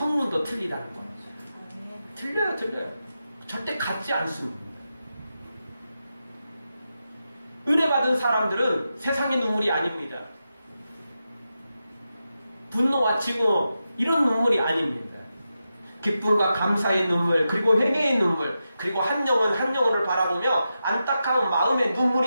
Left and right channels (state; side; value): inverted; both; correlation -0.89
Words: 틀리다는 거예요. 틀려요. 절대 같지 않습니다. 은혜 받은 사람들은 세상의 눈물이 아닙니다. 분노와 증오 이런 눈물이 아닙니다. 기쁨과 감사의 눈물, 그리고 회개의 눈물, 그리고 한 영혼을 바라보며 안타까운 마음의